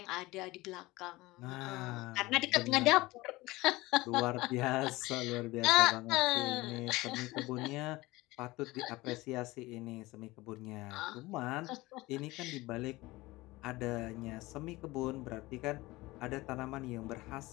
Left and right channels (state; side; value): quieter; right; 20.3 dB